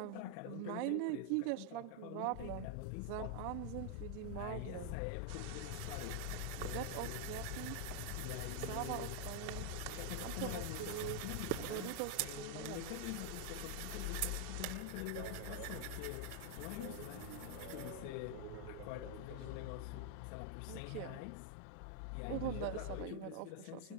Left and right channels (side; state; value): both; different; correlation 0.00